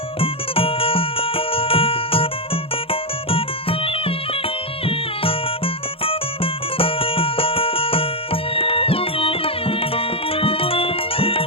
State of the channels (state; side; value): late; right; 0.27 ms